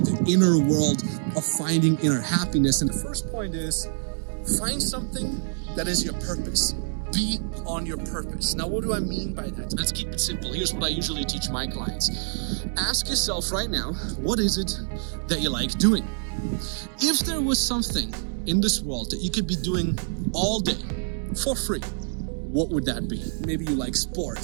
the inner world of finding inner happiness. And the first point is, find something that is your purpose. Be on your purpose. Now, what do I mean by that? Let's keep it simple. Here's what I usually teach my clients. Ask yourself right now, what is it that you like doing? If there was something in this world that you could be doing all day for free, what would that be? Maybe you like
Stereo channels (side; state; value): left; silent; 61 dB below the other